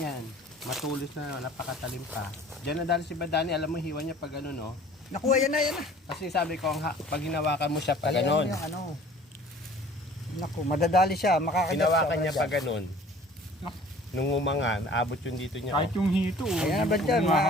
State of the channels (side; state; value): both; normal; correlation 0.49